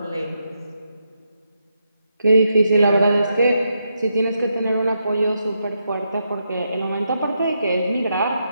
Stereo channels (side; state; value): both; inverted; correlation -0.82